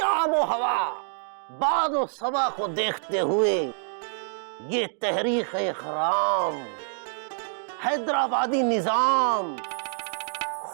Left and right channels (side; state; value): left; silent; digital silence